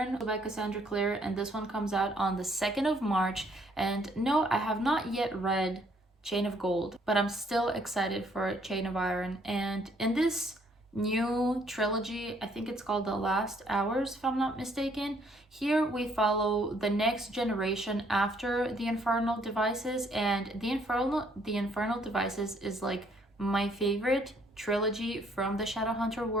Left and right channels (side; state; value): both; normal; correlation 0.66